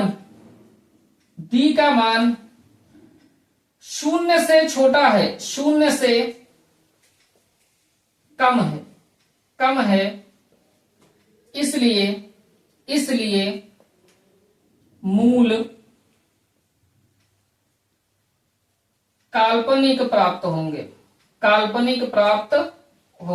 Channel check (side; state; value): both; identical; correlation 1.00